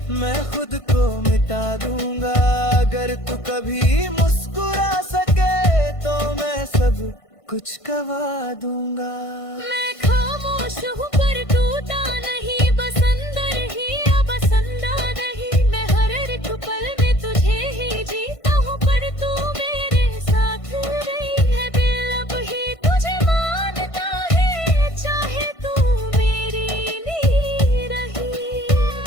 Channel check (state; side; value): late; right; 1.5 ms